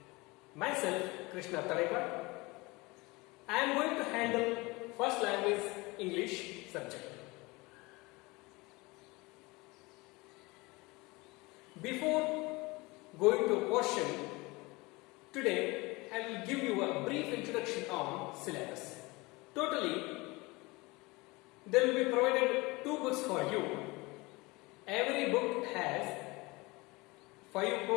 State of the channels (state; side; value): quieter; right; 23.7 dB